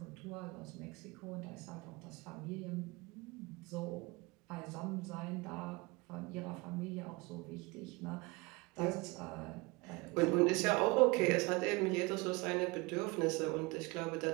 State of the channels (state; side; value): quieter; left; 25.2 dB